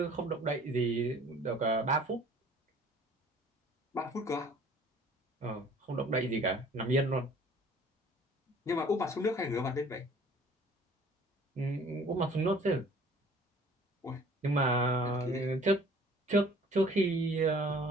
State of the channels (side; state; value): both; normal; correlation 0.52